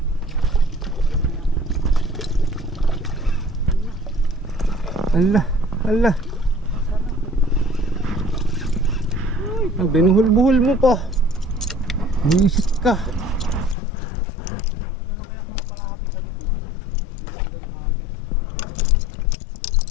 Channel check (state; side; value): drops out; right; at 13.8 s